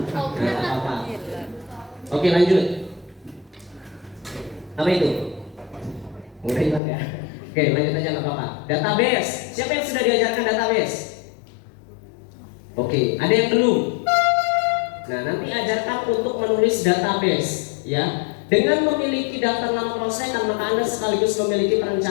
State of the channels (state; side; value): drops out; right; at 6.8 s